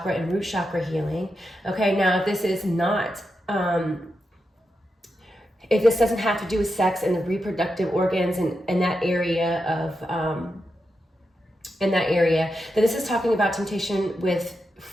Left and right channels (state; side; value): normal; both; correlation 0.87